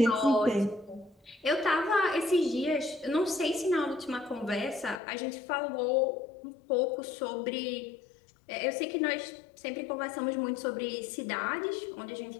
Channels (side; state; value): right; drops out; at 5.0 s